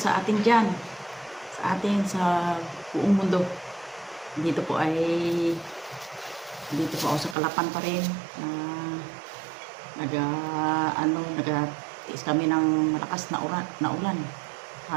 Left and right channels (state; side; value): drops out; left; at 7.4 s